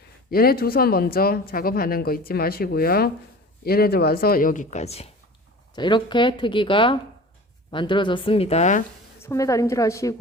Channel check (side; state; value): both; normal; correlation 0.39